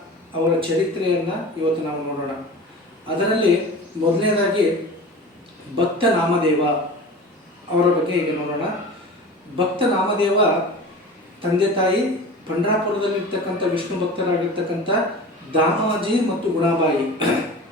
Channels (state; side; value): normal; both; correlation 0.36